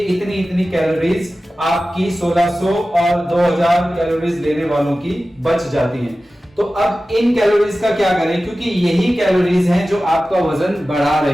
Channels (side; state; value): both; normal; correlation 0.95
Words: इतनी कैलोरीज आपकी 1600 और 2000 कैलोरीज लेने वालों की बच जाती हैं। तो अब इन कैलोरीज का क्या करें, क्योंकि यही कैलोरीज हैं जो आपका वजन बढ़ा